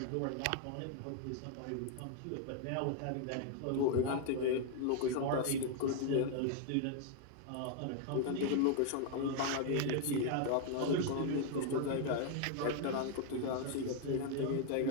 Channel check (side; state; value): both; different; correlation 0.00